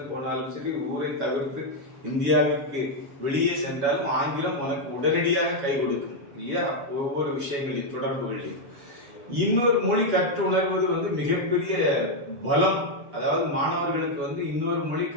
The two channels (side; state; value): left; late; 7.2 ms